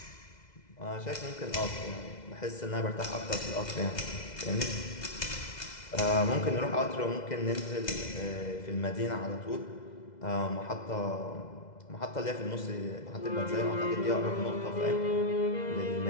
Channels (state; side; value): late; right; 2.0 ms